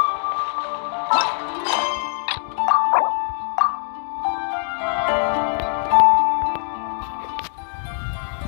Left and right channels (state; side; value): silent; right; digital silence